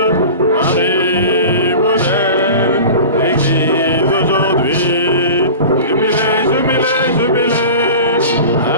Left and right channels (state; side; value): inverted; both; correlation -0.35